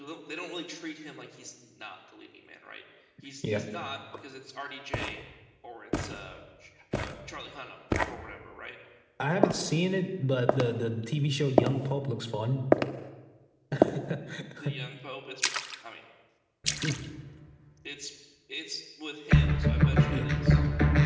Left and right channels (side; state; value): both; identical; correlation 1.00